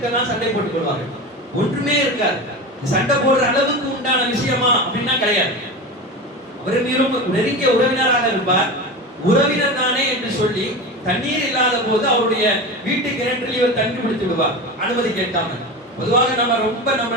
சண்டை போட்டுக் கொள்வார்கள். ஒன்றுமே இருக்காது. சண்டை போடுற அளவுக்கு உண்டான விஷயமா அப்படின்னா கிடையாது. அவர் மீறும் நெருங்கிய உறவினராக இருப்பார். உறவினர் தானே என்று சொல்லி தண்ணீர் இல்லாத போது அவருடைய வீட்டு கிணற்றில் இவர் தண்ணி பிடித்து விடுவார், அனுமதி கேட்காம. பொதுவாக நம்ம ரொம்ப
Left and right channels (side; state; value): both; normal; correlation 0.26